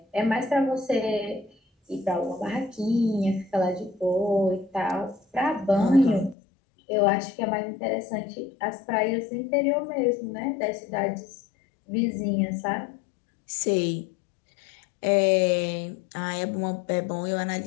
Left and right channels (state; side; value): drops out; right; at 6.4 s